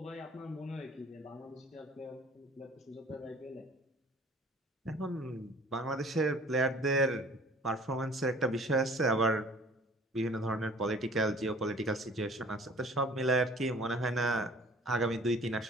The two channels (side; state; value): both; normal; correlation 0.50